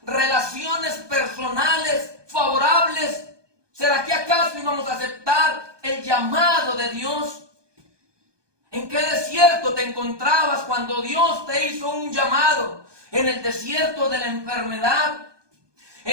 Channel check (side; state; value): left; late; 1.2 ms